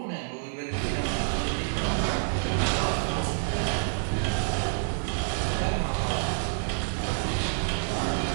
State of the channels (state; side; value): silent; left; digital silence